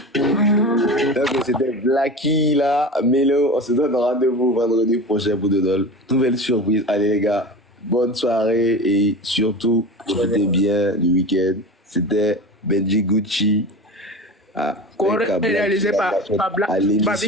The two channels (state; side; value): normal; both; correlation 0.30